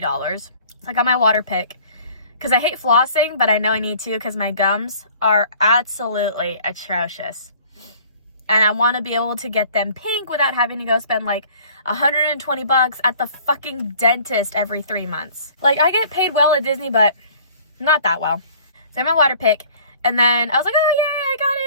So I got my water pick. because I hate flossing, but I know I need to because my gums are absolutely atrocious. And I want to be able to get them pink without having to go spend like $120 at the fucking dentist every 3 months. Like, I get paid well at Disney, but not that well. So I had my water pick, and then I was like, oh yay, I got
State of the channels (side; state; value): both; inverted; correlation -0.52